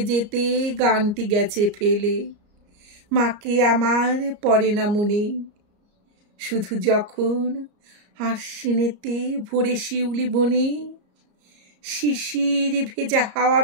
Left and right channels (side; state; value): left; late; 34 ms